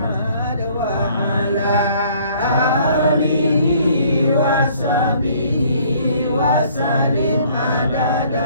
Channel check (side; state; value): both; inverted; correlation -0.59